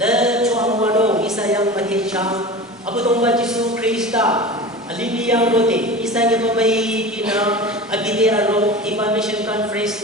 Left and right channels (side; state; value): both; normal; correlation 0.32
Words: Chuang Muano Isa Yang Matechang Abadong Bajisu Krista Alini yang rote, isa niya pa may pinag-abide aro, iba mission conference